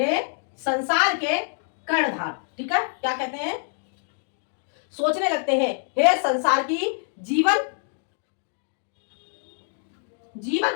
संसार के कर्णधार। ठीक है, क्या कहते हैं? सोचने लगते हैं, हे संसार की जीवन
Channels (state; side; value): silent; right; 60 dB below the other